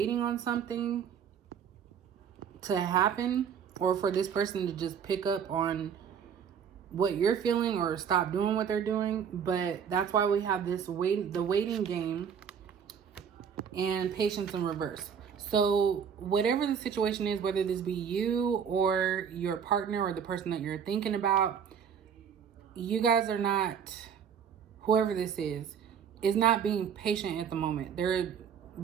on something to happen or for this person to just pick up on what you're feeling or stop doing what they're doing. But that's why we have this the waiting game and patience in reverse. So whatever the situation is, whether this be you or your partner or the person that you're thinking about, you guys are not, whoever this is not being patient at the moment. They're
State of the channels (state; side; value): quieter; left; 7.6 dB